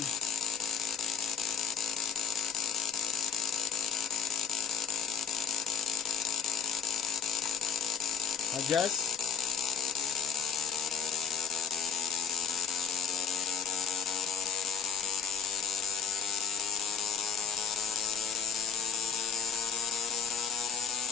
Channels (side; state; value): right; quieter; 6.7 dB